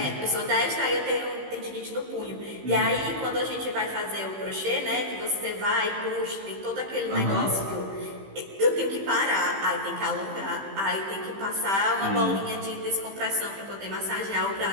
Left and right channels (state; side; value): late; left; 15 ms